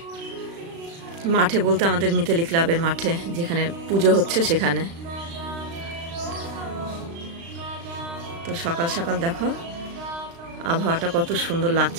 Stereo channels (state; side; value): late; left; 35 ms